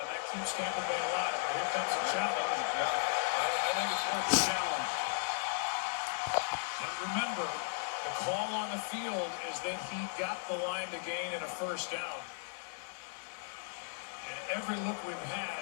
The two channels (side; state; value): right; silent; 54 dB below the other